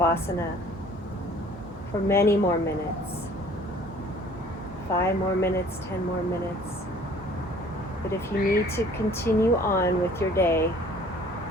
for many more minutes. 5 more minutes, 10 more minutes. But if you need to continue on with your day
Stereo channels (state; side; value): normal; both; correlation 0.53